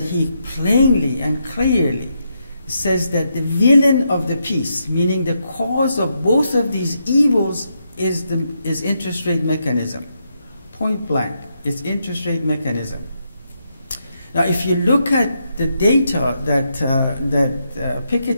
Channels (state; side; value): inverted; both; correlation -0.81